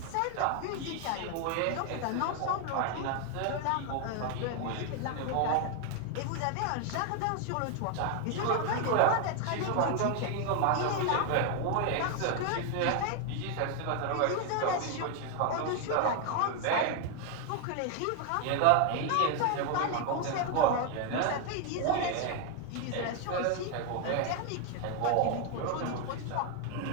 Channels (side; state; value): both; different; correlation 0.01